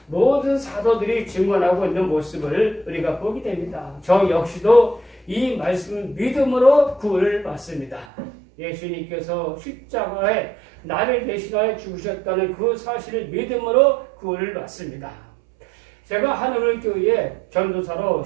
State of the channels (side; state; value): left; drops out; at 8.1 s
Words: 모든 사도들이 증언하고 있는 모습을 우리가 보게 됩니다. 저 역시도 이 말씀을 믿음으로 구원을 받습니다. 예수님께서 십자가에 나를 대신하여 죽으셨다는 그 사실을 믿음으로 구원을 받습니다. 제가 한우물교회에 전도사로